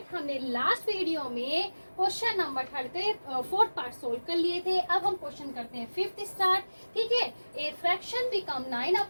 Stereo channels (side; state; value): both; inverted; correlation -1.00